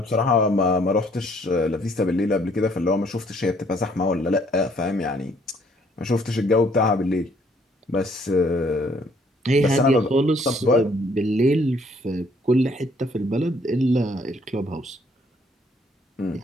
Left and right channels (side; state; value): both; normal; correlation 0.64